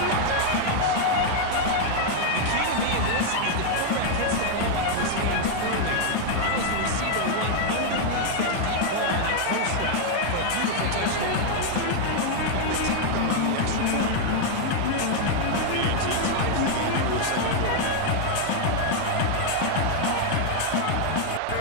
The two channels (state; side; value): different; both; correlation 0.00